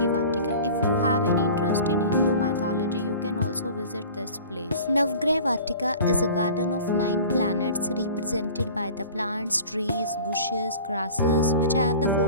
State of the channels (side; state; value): both; inverted; correlation -0.42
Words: Vatika. If you have any interest in Hindu mythology, you can also visit this place. Navgrah Vatika is a garden of 9 planets represented by the plants, trees, bushes, grasses, which have the